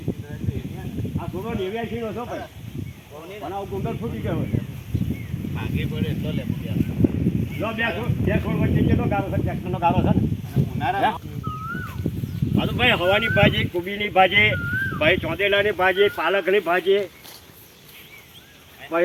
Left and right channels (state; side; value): identical; both; correlation 1.00